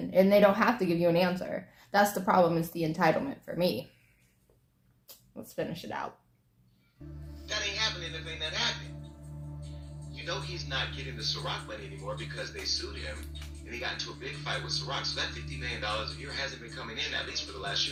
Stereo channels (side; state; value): both; identical; correlation 1.00